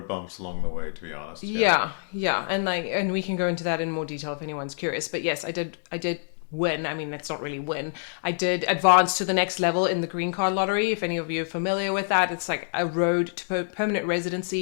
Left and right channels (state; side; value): silent; right; digital silence